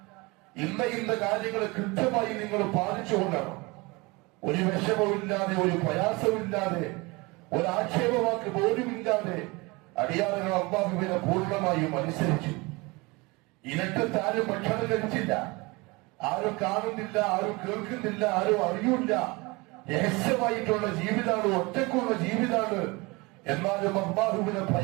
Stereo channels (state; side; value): quieter; left; 25.0 dB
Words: ഇന്ന കാര്യങ്ങൾ കൃത്യമായി നിങ്ങൾ പാലിച്ചുകൊണ്ടാണ്. ഒരു വിഷമവുമില്ലാതെ, ഒരു പ്രയാസമില്ലാതെ, ഒരു ആക്ഷേപവാക്ക് പോലുമില്ലാതെ അടിയാറുകൾ അള്ളാഹുവിനെ പൂർണ്ണമായും അനുസരിച്ചു. ഇനക്കത്ത് ആരും ഭക്ഷണം കഴിച്ചില്ല, ആരും കാണുന്നില്ല, ആരും കേൾക്കുന്നില്ല, ആരും അറിയില്ല. രഹസ്യമായിട്ടുള്ള ജീവിതമാണ്, ഒറ്റക്കുള്ള ജീവിതമാണ്. എന്നാലും അള്ളാഹുവിനെ